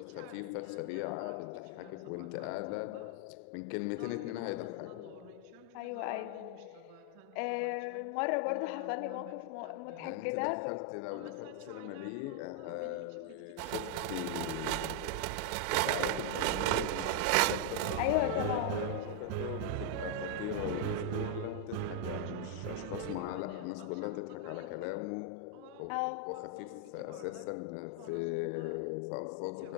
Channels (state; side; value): different; both; correlation 0.00